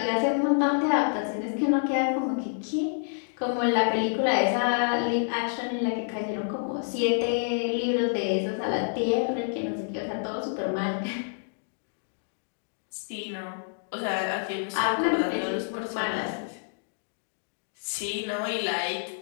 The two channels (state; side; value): silent; right; digital silence